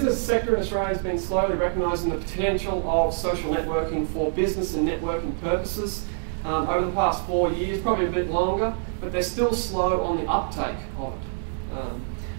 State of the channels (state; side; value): silent; left; 61 dB below the other